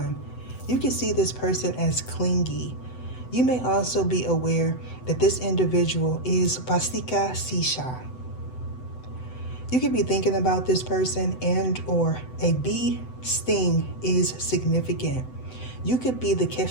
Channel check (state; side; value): late; right; 7.9 ms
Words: You can see this person as clingy. You may also be aware that this individual is Bastika Sisha. You could be thinking about this person, and or a bee sting is significant. You could be the